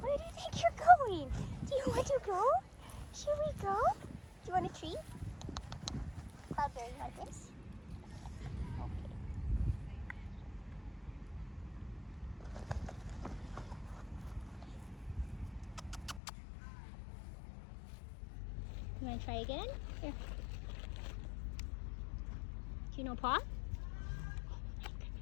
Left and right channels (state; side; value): drops out; right; at 16.2 s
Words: Where do you think you're going? Do you want to go? Should we go? Do you want a treat? Cloudberry, you want this? Okay. You want to try again? Here. Do you know Paw?